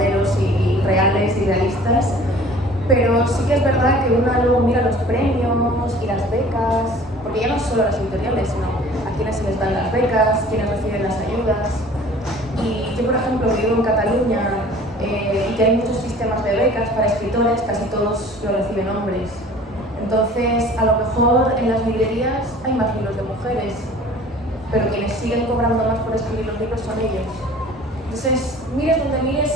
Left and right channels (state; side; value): normal; both; correlation 0.48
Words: y reales y realistas, pero sí que es verdad que uno luego mira los premios y las becas, porque ya no solo las editoriales, sino a quienes se les dan las becas, quienes reciben las ayudas. Y yo, por ejemplo, vivo en Cataluña y que hay muchos sistemas de becas para escritores, casi todos lo reciben hombres. Entonces, a lo mejor en las librerías hay más libros de mujeres, pero quienes siguen cobrando más por escribir los libros son ellos. Entonces, mires donde mires,